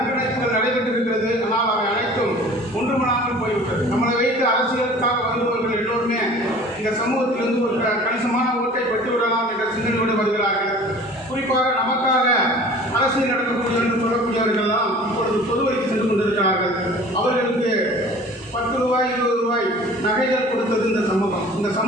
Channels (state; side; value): normal; both; correlation 0.45